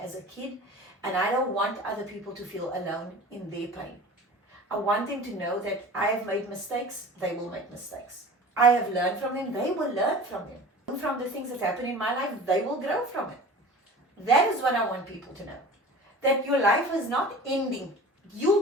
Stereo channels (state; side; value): normal; both; correlation 0.39